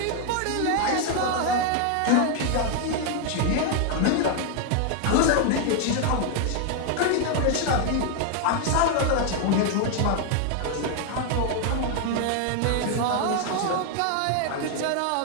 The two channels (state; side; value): different; both; correlation 0.00